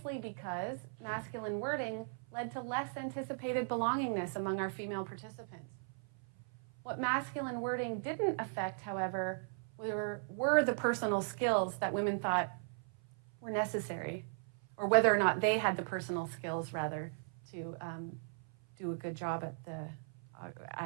because masculine wording led to less anticipated belongingness among our female participants. What masculine wording didn't affect, however, were the personal skills that women thought were necessary, or whether or not they had the personal skills, rather, to do a good job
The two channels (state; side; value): silent; left; 53 dB below the other